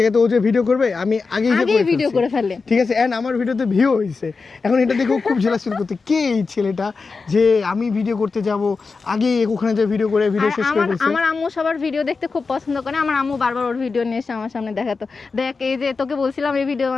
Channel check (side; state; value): right; quieter; 4.5 dB